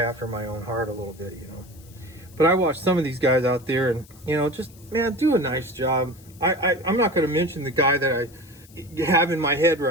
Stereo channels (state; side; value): noise; left; hiss, 25 dB below the sound